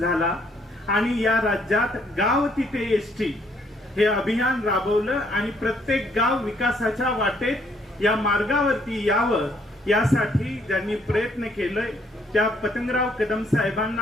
आणि या राज्यात गाव तिथे एसटी हे अभियान राबवलं आणि प्रत्येक गाव विकासाच्या वाटेत या मार्गावरती यावं यासाठी ज्यांनी प्रयत्न केले त्या पतंगराव कदम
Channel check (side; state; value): both; normal; correlation 0.67